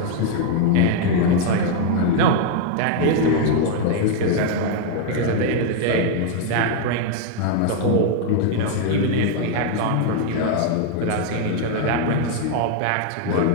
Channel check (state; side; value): different; both; correlation 0.00